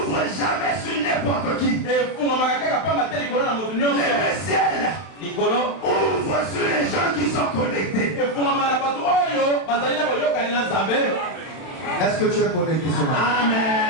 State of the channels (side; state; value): right; late; 31 ms